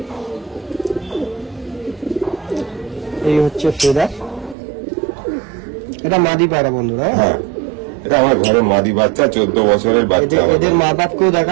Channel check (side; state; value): left; drops out; at 4.5 s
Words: এই হচ্ছে ফেদার, এটা মাদি পায়রা বন্ধুরা। হ্যাঁ এটা আমার ঘরে মাদি বাচ্চা, 14 বছরের বাচ্চা আমার। এদের মা বাপকেও